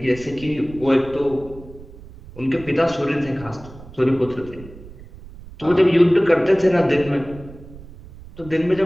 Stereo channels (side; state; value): right; noise; rumble, 18 dB below the sound